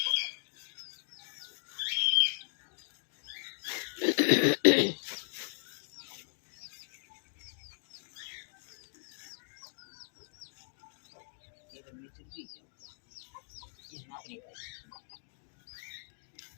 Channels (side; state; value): right; silent; digital silence